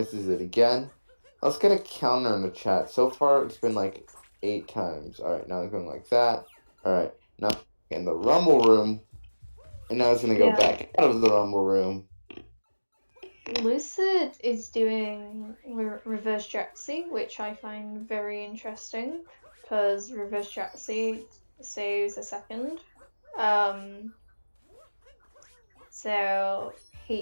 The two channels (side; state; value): both; inverted; correlation -1.00